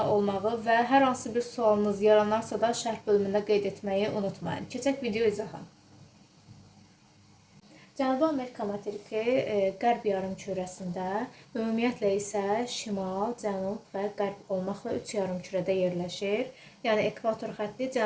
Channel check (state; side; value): identical; both; correlation 1.00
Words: olmağı və hər hansı bir sualınız yaranarsa da şərh bölümündə qeyd etməyi unutmayın. Keçək video izaha. Cənubi Amerika materiki qərb yarımkürəsində, ümumiyyətlə isə şimal, cənub və qərb olmaqla 3 yarımkürədə yerləşir. Yəni ekvator xətti